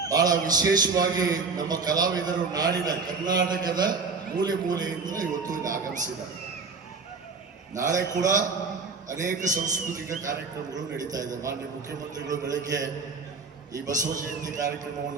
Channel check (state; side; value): quieter; left; 4.5 dB